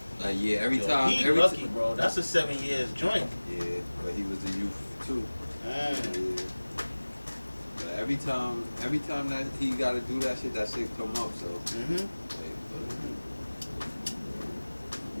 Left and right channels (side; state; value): both; inverted; correlation -1.00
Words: Like every time. He lucky, bro. That's a 7 years joint. Yeah, but he was a youth too. Yeah. But every time that he got to do that shit come up. So.